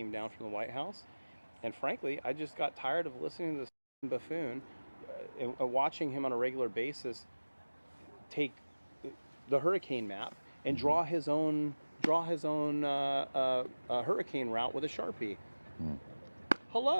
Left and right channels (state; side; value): inverted; both; correlation -1.00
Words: down from the White House. And frankly, I just got tired of listening to this buffoon and watching him on a regular basis take the hurricane map and draw his own hurricane route with a Sharpie.